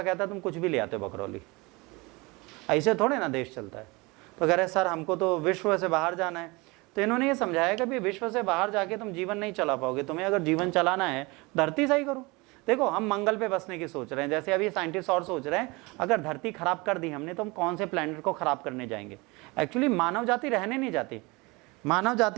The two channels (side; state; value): left; quieter; 25.2 dB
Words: कहता तुम कुछ भी ले आते हो बकरौली, ऐसे थोड़े ना देश चलता है। तो कह रहे सर हमको तो विश्व से बाहर जाना है। तो इन्होंने ये समझाया कि भाई विश्व से बाहर जाके तुम जीवन नहीं चला पाओगे, तुम्हें अगर जीवन चलाना है धरती सही करो। देखो हम मंगल पे बसने की सोच रहे हैं, जैसे अभी साइंटिस्ट और सोच रहे हैं अगर धरती खराब कर दी हमने तो हम कौन से प्लैनेट को खराब करने जाएंगे। एक्चुअली मानव जाति रहने नहीं जाती, मानव